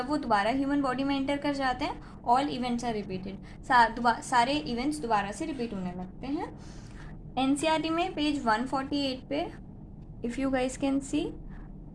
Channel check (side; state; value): both; identical; correlation 1.00